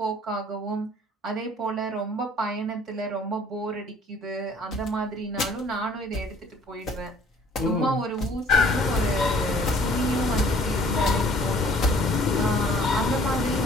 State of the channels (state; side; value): normal; both; correlation 0.55